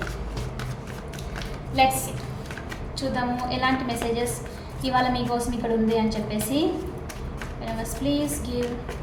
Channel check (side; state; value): both; identical; correlation 1.00